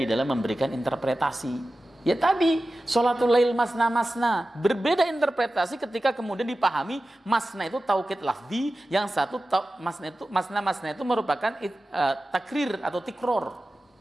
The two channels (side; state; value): both; normal; correlation 0.94